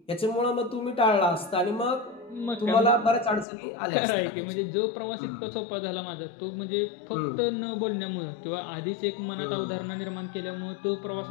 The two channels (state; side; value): drops out; right; at 3.5 s